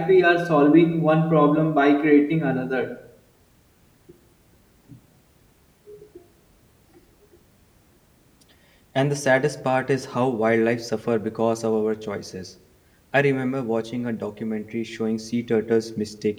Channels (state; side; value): identical; both; correlation 1.00